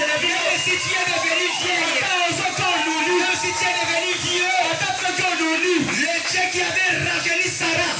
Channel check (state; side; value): identical; both; correlation 1.00